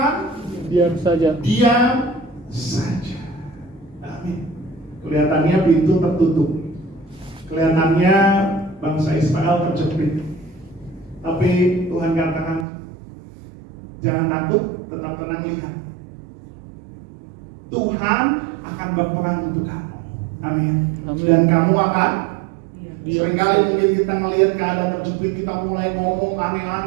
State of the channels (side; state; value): left; drops out; at 12.7 s